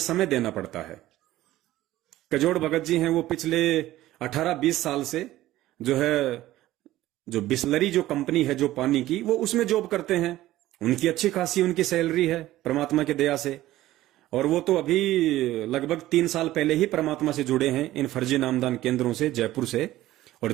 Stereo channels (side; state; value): left; quieter; 15.4 dB